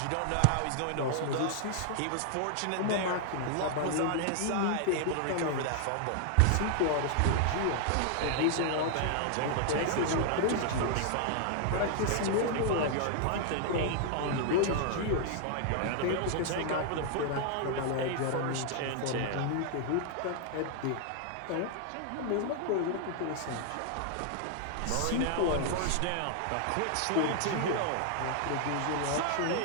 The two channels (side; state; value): both; different; correlation 0.00